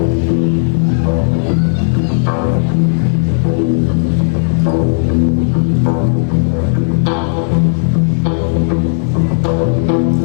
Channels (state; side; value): silent; right; digital silence